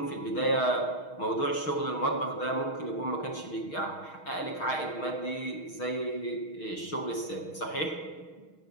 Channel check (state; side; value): late; right; 6.4 ms